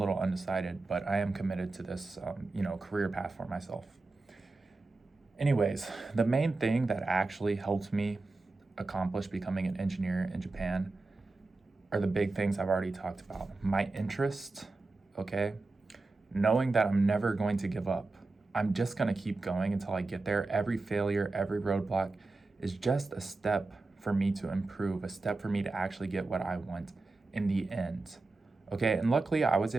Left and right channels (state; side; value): quieter; left; 3.5 dB